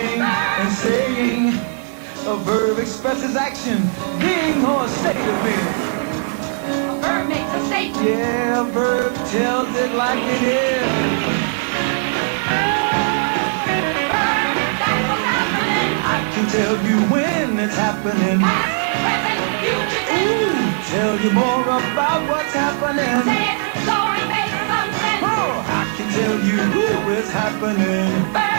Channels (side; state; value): left; silent; 64 dB below the other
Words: and saying. A verb expresses action, being or a state of being. A verb makes a statement. Yeah, a verb tells it like it is. I can tell you when it's happening. Ooh, tell you more about what's happening. Oh, I can tell you who is happening.